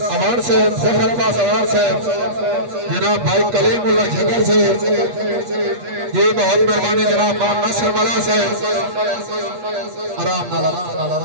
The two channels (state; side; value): late; left; 8.4 ms